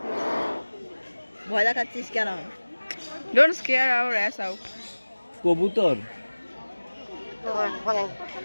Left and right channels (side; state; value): both; inverted; correlation -1.00